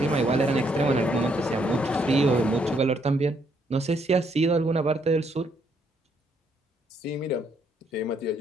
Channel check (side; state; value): both; normal; correlation 0.72